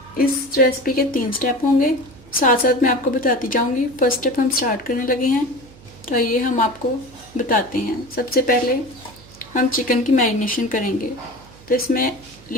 इस रेसिपी के 3 स्टेप होंगे, साथ साथ मैं आपको बताती जाऊंगी। फर्स्ट स्टेप हम स्टार्ट करने लगे हैं, तो ये हम आपको बताते हैं। सबसे पहले हम चिकन की मैरिनेशन करेंगे, तो इसमें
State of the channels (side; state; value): right; noise; hum, 22 dB below the sound